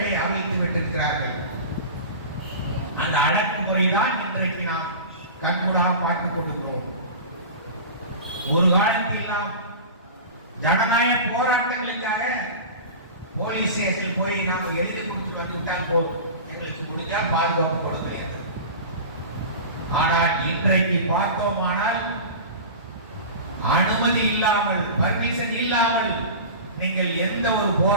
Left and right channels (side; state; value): both; inverted; correlation -0.32